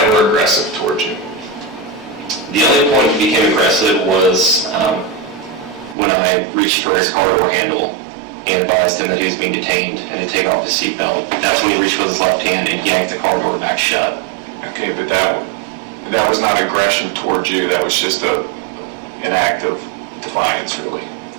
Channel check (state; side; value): drops out; left; at 6.0 s